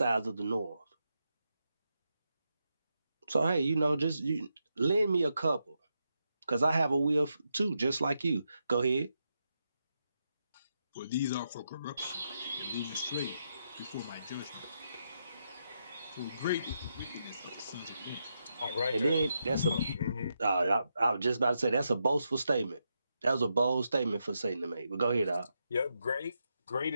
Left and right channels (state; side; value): inverted; both; correlation -0.84